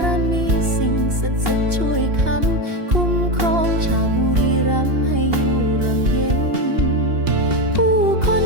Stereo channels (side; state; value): left; late; 2.8 ms